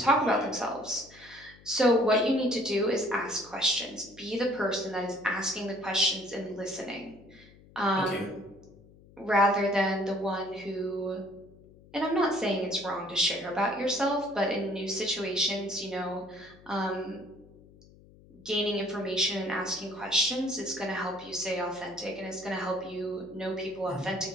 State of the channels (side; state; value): left; noise; hum, 24 dB below the sound